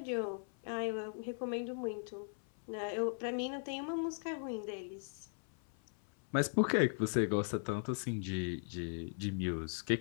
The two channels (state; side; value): silent; right; 52 dB below the other